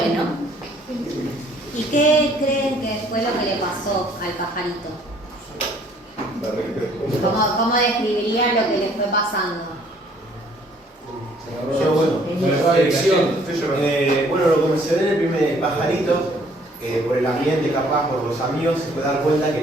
¿Y qué creen que fue lo que le pasó al pajarito? ¿Cómo describirían lo que le fue pasando? Bueno, lo que mencioné en el primer pajarito, por el ambiente, capaz, por los amigos, se puede dar cuenta que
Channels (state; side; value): normal; both; correlation 0.60